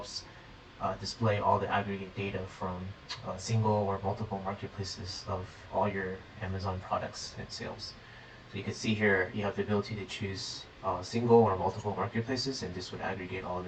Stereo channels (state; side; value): identical; both; correlation 1.00